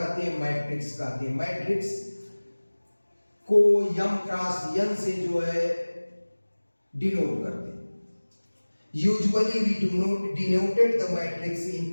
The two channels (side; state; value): both; inverted; correlation -1.00